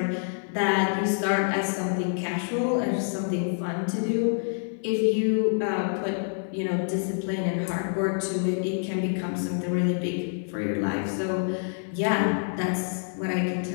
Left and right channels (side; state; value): right; silent; 59 dB below the other